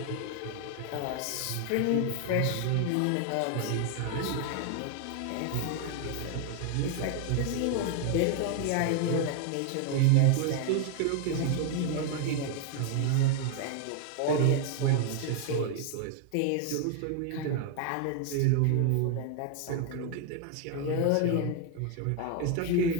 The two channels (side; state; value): both; different; correlation 0.00